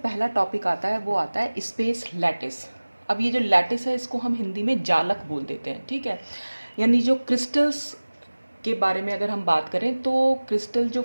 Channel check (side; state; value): both; inverted; correlation -1.00